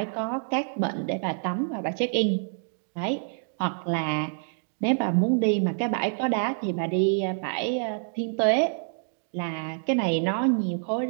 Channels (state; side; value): silent; left; digital silence